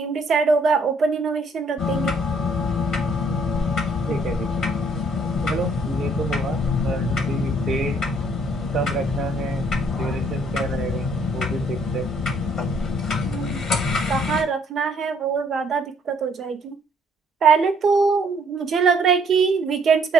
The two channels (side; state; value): both; normal; correlation 0.64